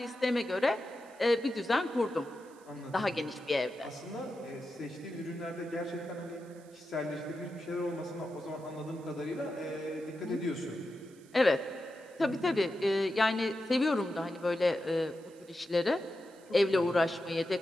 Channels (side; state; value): right; noise; hiss, 27 dB below the sound